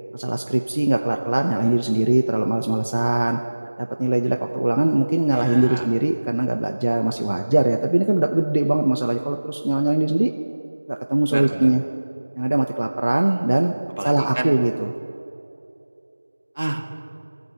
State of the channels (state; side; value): inverted; both; correlation -1.00